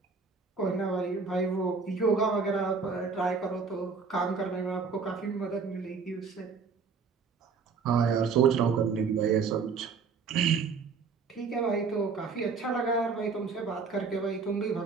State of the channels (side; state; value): left; quieter; 5.1 dB